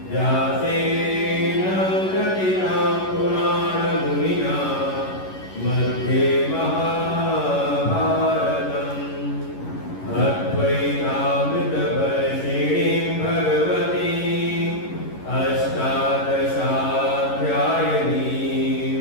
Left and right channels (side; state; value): right; late; 11 ms